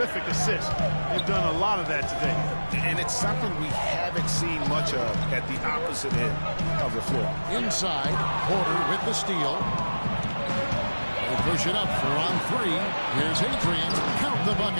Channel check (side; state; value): both; inverted; correlation -1.00